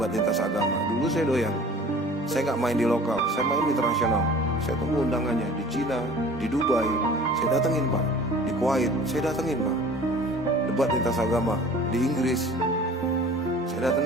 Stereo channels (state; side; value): normal; both; correlation 0.45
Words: lintas agama. Dulu saya doyan. Saya gak main di lokal, saya main di internasional. Saya tunggu undangannya di Cina, di Dubai, saya datengin, Pak. Di Kuwait, saya datengin, Pak. Debat lintas agama di Inggris, saya